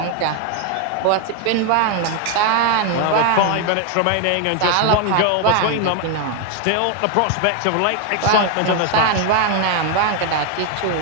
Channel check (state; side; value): different; both; correlation 0.01